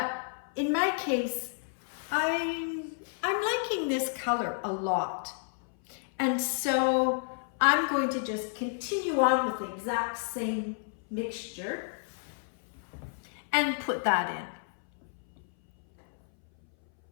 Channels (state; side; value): silent; right; 57 dB below the other